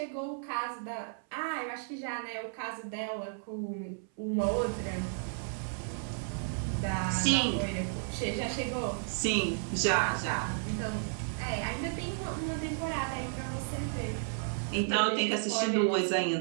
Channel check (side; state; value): left; silent; 56 dB below the other